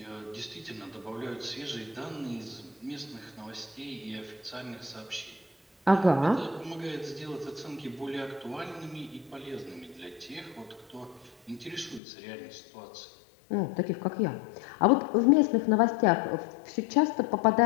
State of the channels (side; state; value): right; drops out; at 12.0 s